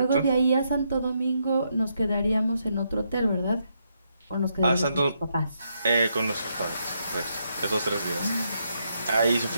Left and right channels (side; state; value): both; inverted; correlation -0.79